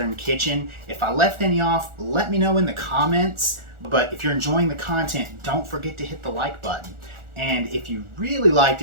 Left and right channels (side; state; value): left; late; 1.4 ms